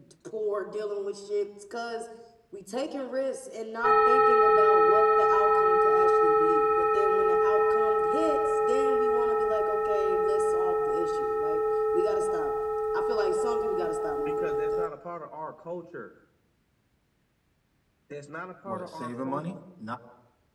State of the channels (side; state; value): both; identical; correlation 1.00